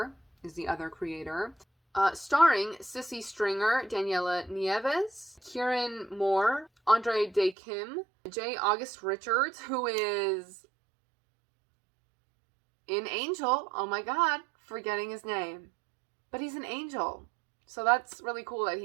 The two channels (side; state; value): left; drops out; at 7.6 s